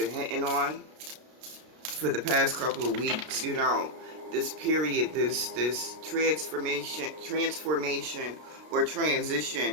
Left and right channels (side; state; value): left; late; 32 ms